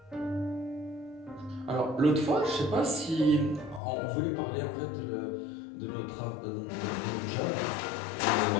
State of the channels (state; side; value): drops out; right; at 3.8 s